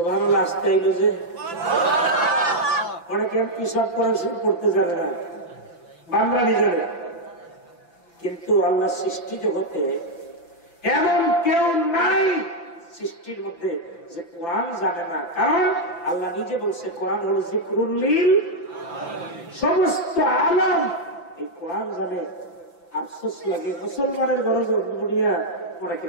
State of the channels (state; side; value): late; right; 5.9 ms